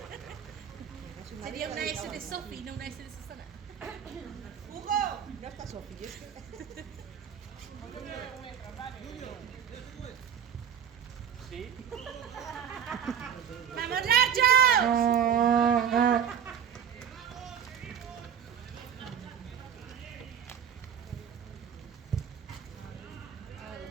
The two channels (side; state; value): left; quieter; 8.4 dB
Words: Sería una S de Sofi, no una S de Susana. ¡Hugo! No está Sofi, es que... Sí. ¡Vamos, Nacho!